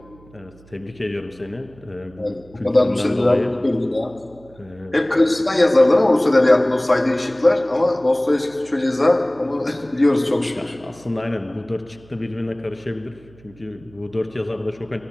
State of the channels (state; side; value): noise; right; hum, 25 dB below the sound